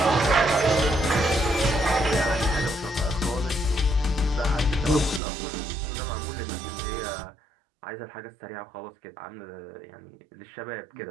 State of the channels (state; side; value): drops out; left; at 5.2 s